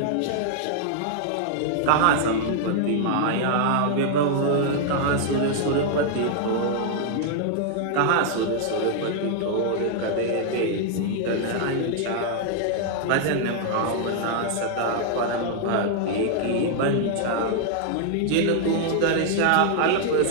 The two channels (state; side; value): different; both; correlation -0.01